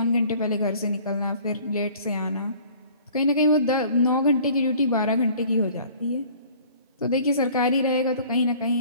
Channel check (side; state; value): both; inverted; correlation -0.50